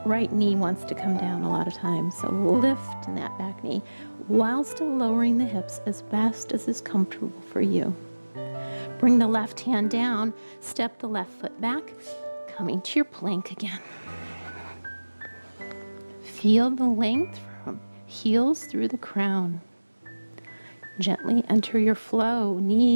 right knee wants to come down a lot of times. So lift in that back knee while still lowering the hips as best as is comfortable for you. Bring the left hand down, step the left foot back, coming to your plank again. Feel the length from heels through the crown. Gently enter your flow,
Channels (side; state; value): both; inverted; correlation -1.00